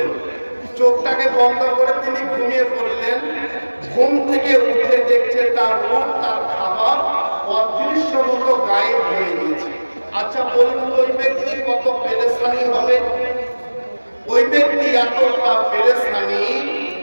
চোখটাকে বন্ধ করে তিনি ঘুমিয়ে পড়লেন। ঘুম থেকে উঠে দেখছে তার উট, তার খাবার অদৃশ্য মতো গায়েব হয়ে গিয়েছে। আচ্ছা বলুন, ওই ব্যক্তি কত পেরেশানি হবে? ওই ব্যক্তি এতটা পেরেশানি,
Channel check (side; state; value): both; inverted; correlation -1.00